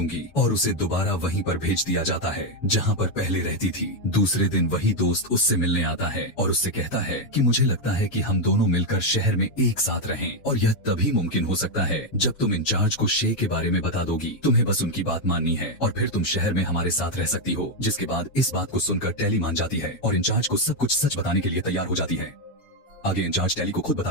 और उसे दोबारा वहीं पर भेज दिया जाता है जहाँ पर पहले रहती थी। दूसरे दिन वही दोस्त उससे मिलने आता है और उससे कहता है कि मुझे लगता है कि हम दोनों मिलकर शहर में एक साथ रहें, और यह तभी मुमकिन हो सकता है जब तुम इंचार्ज को शे के बारे में बता दोगी। तुम्हें बस उनकी बात माननी है और फिर तुम शहर में हमारे साथ रह सकती हो। जिसके बाद इस बात को सुनकर टैली मान जाती है और इंचार्ज को सब कुछ सच बताने के लिए तैयार हो जाती है। आगे इंचार्ज टैली को खुद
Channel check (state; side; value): late; right; 7.2 ms